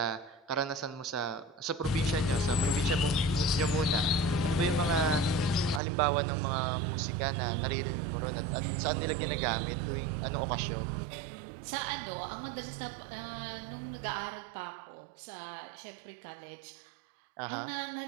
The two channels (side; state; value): left; drops out; at 5.8 s